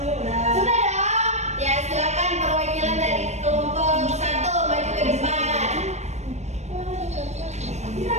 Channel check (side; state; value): left; late; 0.32 ms